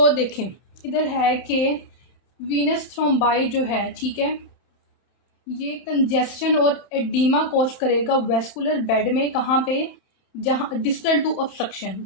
देखें, इधर है कि वीनस थ्रोम्बाई जो है, ठीक है, ये कंजेस्शन और एडिमा कॉज करेगा वेस्कुलर बेड में। कहाँ पे? जहाँ डिस्टल टू ऑब्स्ट्रक्शन,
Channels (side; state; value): right; late; 31 ms